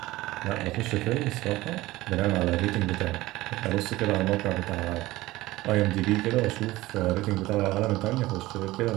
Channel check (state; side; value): quieter; left; 18.2 dB